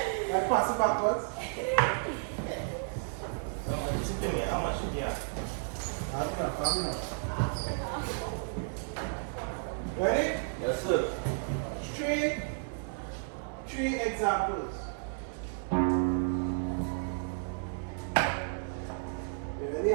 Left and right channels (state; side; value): silent; left; digital silence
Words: Like pass it backwards. How much you get? Have enough. Ready? Yes, sir. Three examples. You ready?